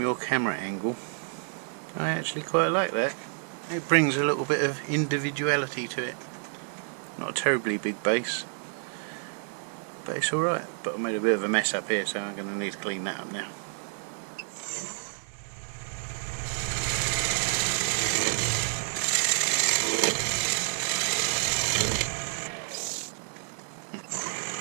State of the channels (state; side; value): silent; left; 57 dB below the other